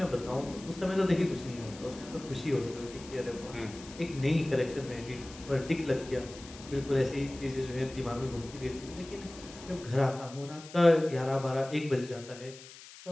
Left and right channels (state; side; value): noise; left; hiss, 17 dB below the sound